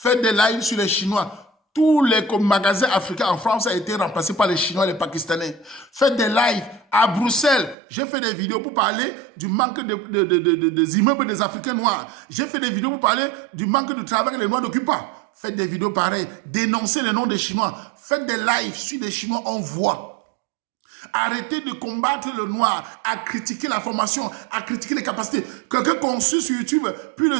des lives sur les Chinois. Tous les magasins africains en France ont été remplacés par les Chinois et les Pakistanais. Faites des lives à Bruxelles. J'ai fait des vidéos pour parler du manque des immeubles des Africains noirs. J'ai fait des vidéos pour parler du manque de travail que les Noirs n'occupent pas. Faites des vidéos pareilles. Dénoncez le nom des Chinois. Faites des lives sur les Chinois, on voit. Arrêtez de combattre le noir, à critiquer la formation, à critiquer les capacités. Quelqu'un conçu sur YouTube plus de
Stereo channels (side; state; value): left; drops out; at 7.8 s